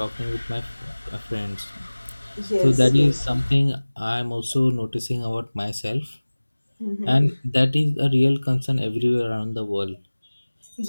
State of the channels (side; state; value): both; inverted; correlation -1.00